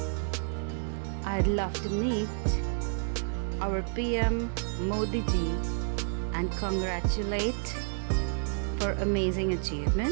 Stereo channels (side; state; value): left; silent; digital silence